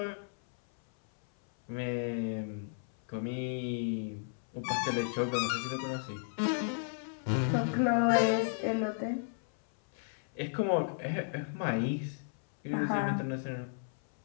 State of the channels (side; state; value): right; silent; 55 dB below the other